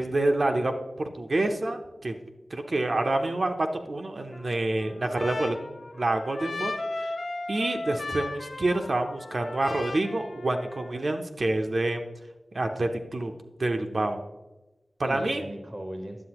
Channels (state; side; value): normal; both; correlation 0.96